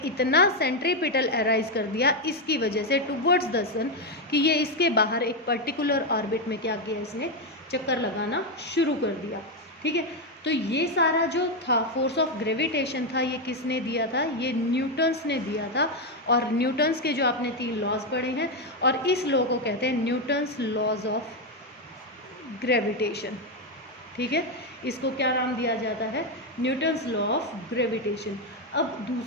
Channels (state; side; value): normal; both; correlation 0.06